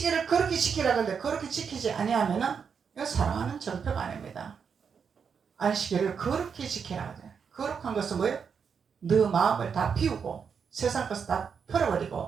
그렇게 지키라 그러는데 그렇게 지키지 아니하면은 이건 사랑하는 정표가 아닙니다. 안식일을 그렇게 지키라 그래요. 거룩한 것은 뭐예요? 너 마음을 다 비우고 세상 것을 다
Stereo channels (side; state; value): left; quieter; 6.5 dB